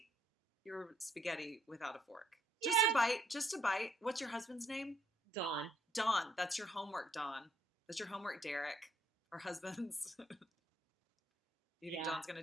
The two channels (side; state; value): both; normal; correlation 0.70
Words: your spaghetti without a fork. Just a Yeah. bite, just a bite. What's your husband's name? Dawn. Don. That's your homework, Don. That's your homework, Derek. Our husbands. You think Yeah. Don's going to